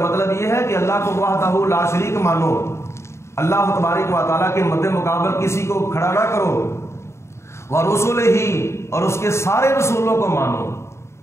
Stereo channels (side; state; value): right; late; 0.13 ms